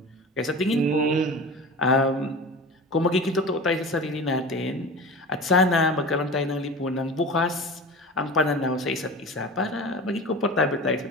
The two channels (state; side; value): normal; both; correlation 0.34